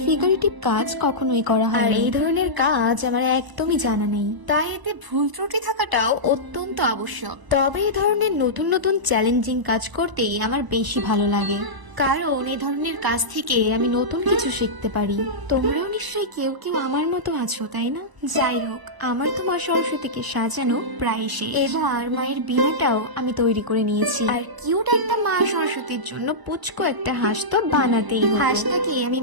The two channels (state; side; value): late; left; 1.0 ms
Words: ফিগারেটিভ কাজ কখনোই করা হয় আর এই ধরনের কাজ আমার একদমই জানা নেই, তাই এতে ভুল ত্রুটি থাকাটাও অত্যন্ত আবশ্যক। তবে এই ধরনের নতুন নতুন চ্যালেঞ্জিং কাজ করতেই আমার বেশি ভালো লাগে, কারণ এই ধরনের কাজ থেকে আমি নতুন কিছু শিখতে পারি। তোমরাও নিশ্চয়ই কেউ কেউ আমার মতো আছো, তাই না? যাই হোক, আমার তো মা সরস্বতীকে সাজানো প্রায় শেষ। এবার মায়ের বীণাটাও আমি তৈরি করে নিয়েছি, আর কিউট একটা মা সরস্বতীর জন্য পুচকো একটা হাঁস তো বানাতেই হবে। হাঁসটাকে আমি